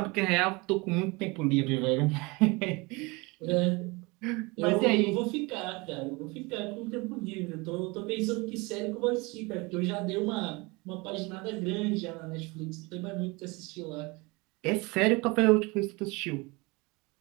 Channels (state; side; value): quieter; left; 25.8 dB